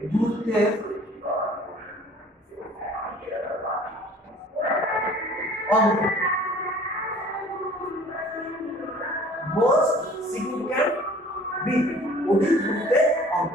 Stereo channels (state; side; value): normal; both; correlation 0.50